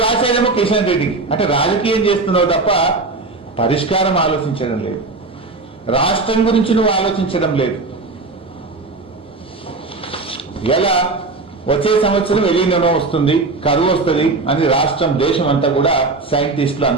రాసేదేమో కిషన్ రెడ్డికి. అంటే రాజకీయం చేస్తున్నావు తప్ప పరిష్కారం ఆలోచించడం లేదు. రాష్ట్రం గురించి నువ్వు ఆలోచించడం లేదు. ఎలా వచ్చే సంవత్సరం ఎలినో వస్తుంది, కరువు వస్తుంది అని రాష్ట్రం దేశం అంతా కూడా సైంటిస్టులు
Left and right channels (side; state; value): left; quieter; 3.6 dB